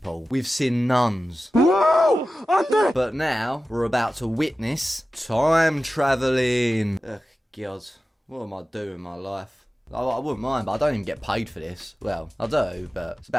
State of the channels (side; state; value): both; normal; correlation 0.95